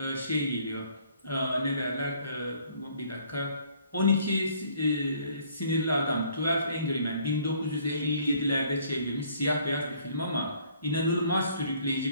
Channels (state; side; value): inverted; both; correlation -0.60